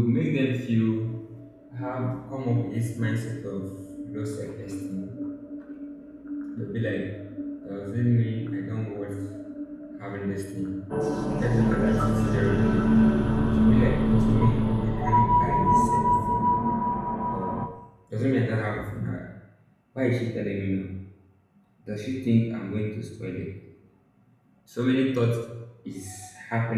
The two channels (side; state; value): both; identical; correlation 1.00